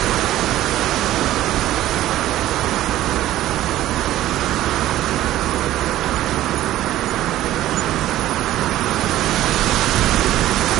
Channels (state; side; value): quieter; left; 14.1 dB